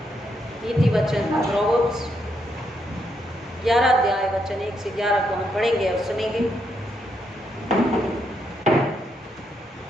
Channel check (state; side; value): normal; both; correlation 0.78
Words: नीति वचन प्रोवर्ब्स 11 अध्याय वचन 1 से 11 को हम पढ़ेंगे और सुनेंगे।